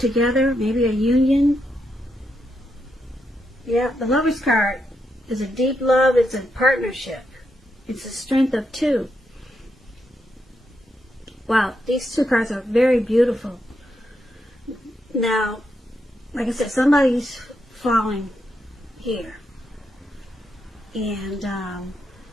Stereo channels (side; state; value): both; normal; correlation 0.82